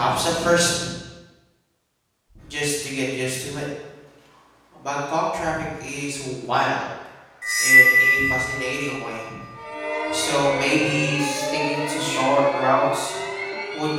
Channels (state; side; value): identical; both; correlation 1.00